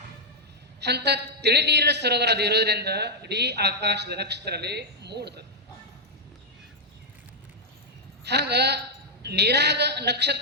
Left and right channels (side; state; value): both; normal; correlation -0.03